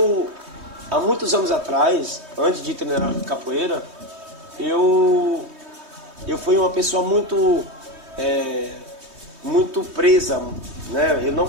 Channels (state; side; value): late; left; 3.2 ms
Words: há muitos anos atrás, antes de treinar capoeira, eu fui uma pessoa muito presa, né? Eu não